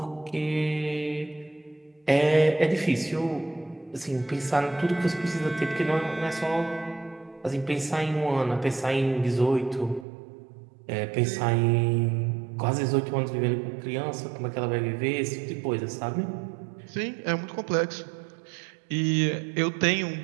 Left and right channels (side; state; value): left; drops out; at 10.1 s